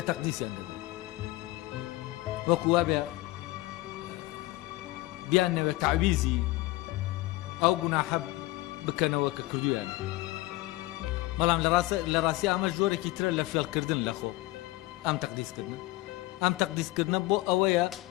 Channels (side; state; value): right; quieter; 19.5 dB